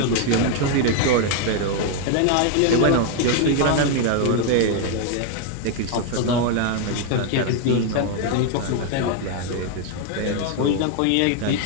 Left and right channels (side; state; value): both; different; correlation 0.01